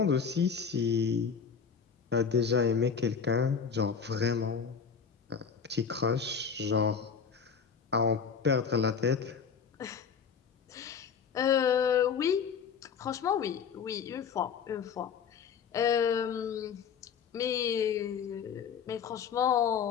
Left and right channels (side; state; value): right; quieter; 6.5 dB